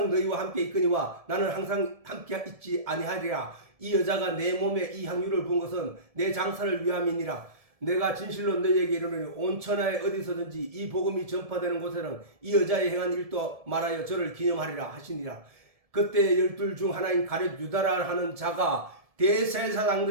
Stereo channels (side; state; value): left; late; 1.7 ms